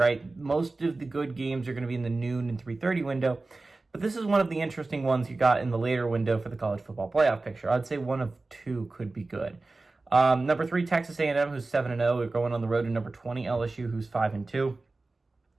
Most of the good games are going to be in the noon and 3:30 window. But this is one of the interesting ones you got in the later window for the college football playoff picture. I'd say one of two could be good. Number 3, Texas A&M, who's 7-0. We're going on the road to number 20, LSU, who's 5-2.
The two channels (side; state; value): left; quieter; 3.4 dB